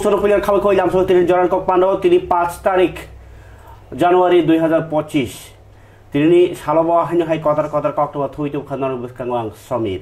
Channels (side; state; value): both; identical; correlation 1.00